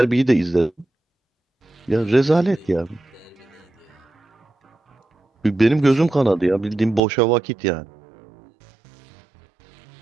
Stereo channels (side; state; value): left; drops out; at 7.0 s